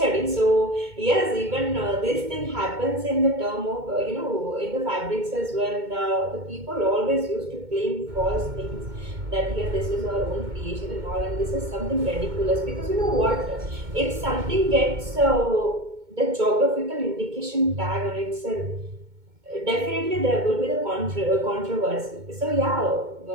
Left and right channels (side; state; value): left; late; 2.2 ms